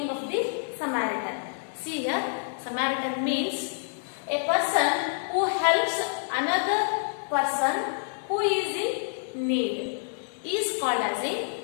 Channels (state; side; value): silent; right; digital silence